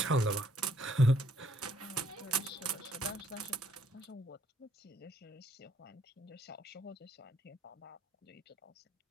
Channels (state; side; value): normal; both; correlation 0.68